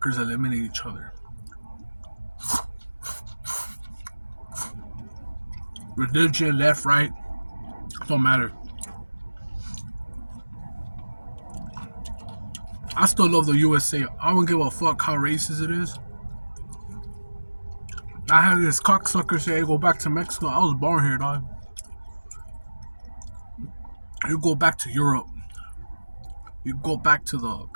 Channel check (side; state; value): both; inverted; correlation -1.00